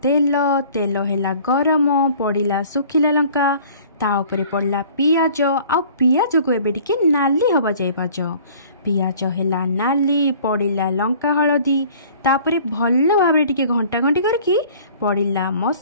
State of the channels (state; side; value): inverted; both; correlation -0.51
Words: तेल, तेल हैला गरम, पड़िला सुखिला लंका, ता उपरे पड़ला पियाज। आउ पियाज को एबे टिके नाली हवा जाय पाज। पियाज हैला नाली, पड़िला लंका हळदी, तापरे भल्ल भाबरे टिके घंटा घंटी करके पड़िला